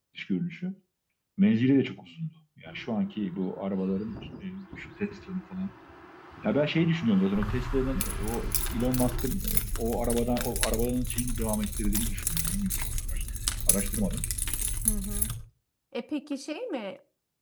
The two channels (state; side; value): identical; both; correlation 1.00